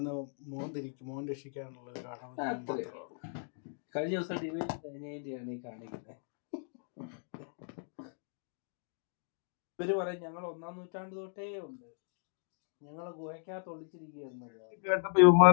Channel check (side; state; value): right; silent; digital silence